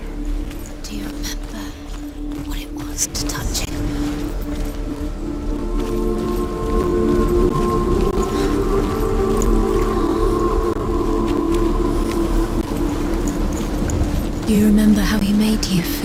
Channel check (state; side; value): identical; both; correlation 1.00